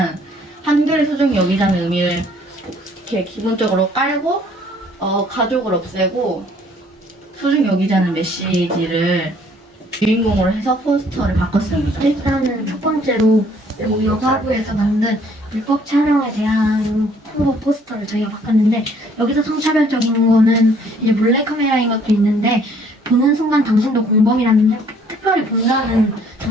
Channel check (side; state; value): both; normal; correlation 0.61